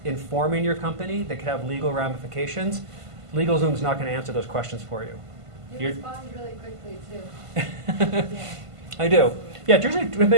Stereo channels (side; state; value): left; late; 1.5 ms